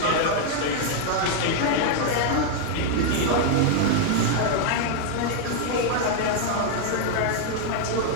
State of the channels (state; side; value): different; both; correlation 0.00